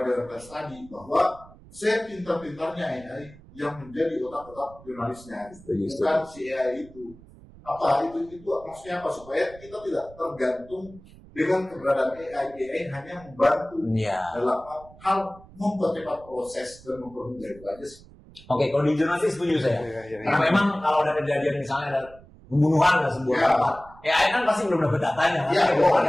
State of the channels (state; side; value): noise; right; rumble, 22 dB below the sound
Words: daerah tadi bahwa saya pintar-pintarnya AI yang menjadi otak-otak jurnalisnya. Bukan si AI itu. Itu maksudnya apa? Supaya kita tidak tergantung dengan keberadaan AI hanya membantu dalam hal mempercepat proses dan mempermudah itu aja sih. Oke, kalau di jurnalistik setuju saya. Karena memang kalau ada kejadian misalnya ada pembunuhan di sebuah tempat, AI kan pasti belum dapat datanya,